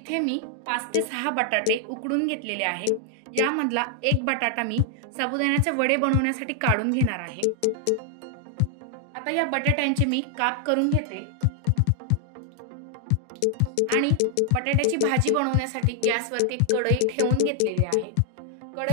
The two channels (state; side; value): different; both; correlation 0.00